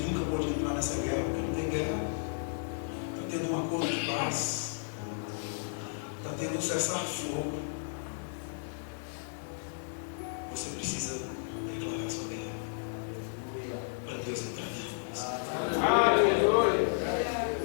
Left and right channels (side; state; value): right; silent; digital silence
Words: pode entrar nessa guerra, porque não tem guerra. Está tendo um acordo de paz. Está tendo um cessar-fogo. Você precisa declarar sua guerra para Deus entrar dentro de você.